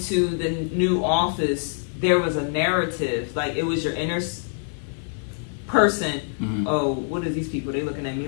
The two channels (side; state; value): right; silent; 62 dB below the other